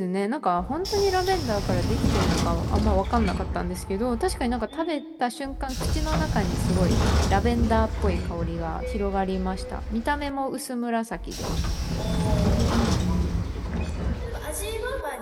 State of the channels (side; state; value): both; identical; correlation 1.00